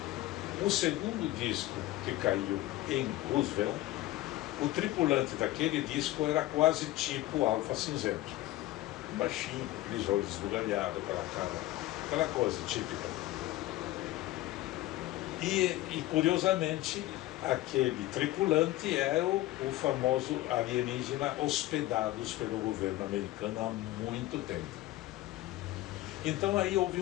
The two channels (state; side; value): quieter; right; 16.5 dB